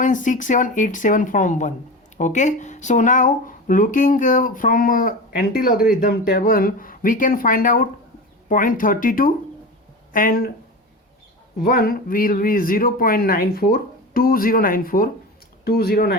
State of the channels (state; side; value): normal; both; correlation 0.28